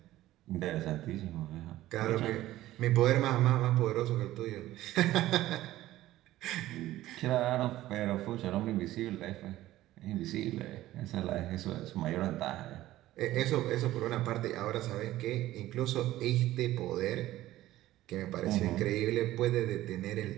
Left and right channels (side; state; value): left; quieter; 15.3 dB